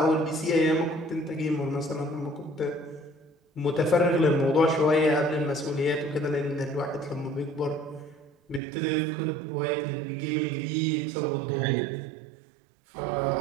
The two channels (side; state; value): left; drops out; at 8.6 s